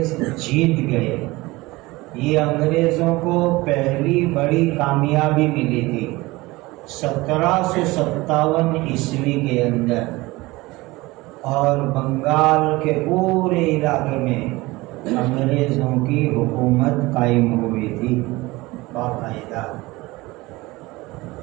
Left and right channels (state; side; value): quieter; left; 21.1 dB